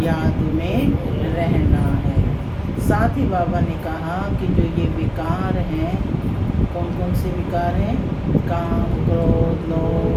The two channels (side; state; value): both; identical; correlation 1.00